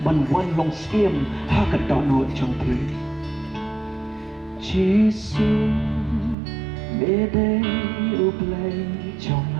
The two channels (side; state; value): left; drops out; at 6.4 s